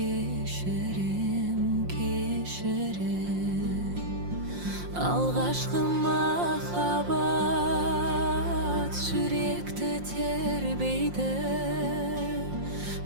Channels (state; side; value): late; left; 5.6 ms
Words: кешірем. Алғашқы махаббат жүректі тербейді,